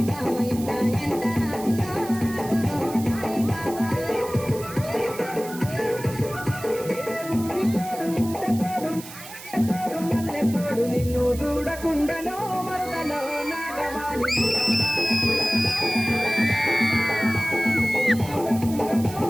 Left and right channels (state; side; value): noise; right; hiss, 15 dB below the sound